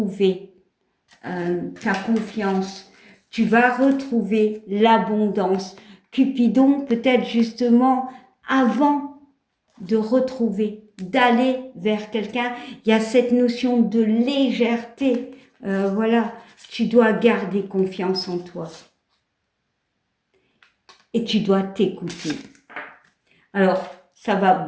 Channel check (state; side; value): identical; both; correlation 1.00